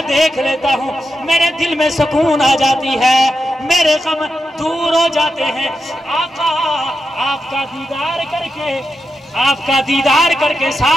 देख लेता हूँ, मेरे दिल में सुकून आ जाती है, मेरे गम दूर हो जाते हैं। आका आपका दीदार करके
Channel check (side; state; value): both; normal; correlation 0.88